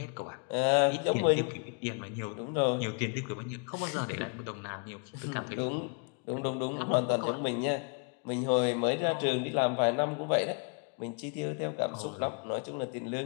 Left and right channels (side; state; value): right; quieter; 35.2 dB